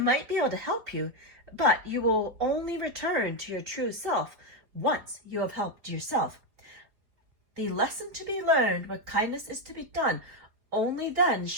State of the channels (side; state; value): left; late; 4.7 ms